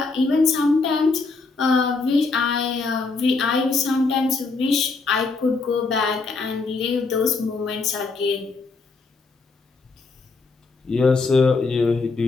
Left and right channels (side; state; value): right; quieter; 4.1 dB